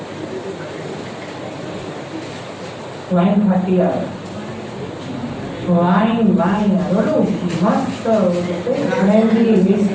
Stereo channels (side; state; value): both; identical; correlation 1.00